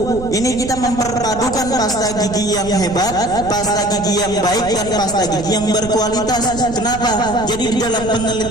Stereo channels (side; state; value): right; noise; rumble, 12 dB below the sound